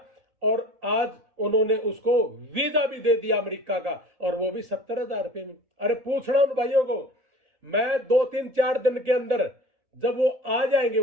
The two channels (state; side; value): late; left; 1.7 ms